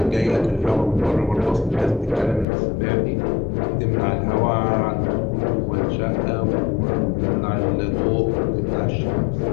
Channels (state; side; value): drops out; right; at 2.5 s